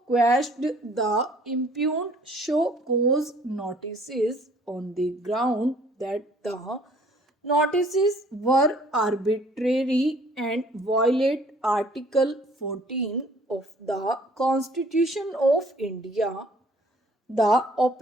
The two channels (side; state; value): both; normal; correlation 0.57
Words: quashed the impugned show cause notices on the ground that the notices were arbitrary and violate Article 14 of the Constitution of India. The